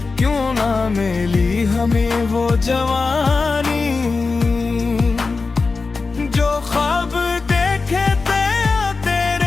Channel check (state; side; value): quieter; right; 4.2 dB